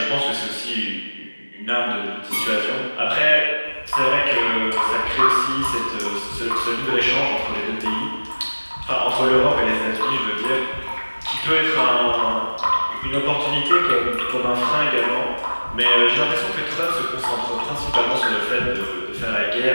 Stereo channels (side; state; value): both; inverted; correlation -1.00